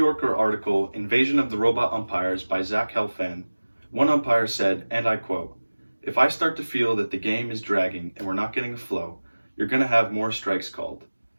article, Invasion of the Robot Umpires by Zach Helfand, one umpire said, and I quote, "If I start to feel that the game is dragging and we're not getting a flow, you're going to have more strikes called.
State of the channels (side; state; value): both; inverted; correlation -1.00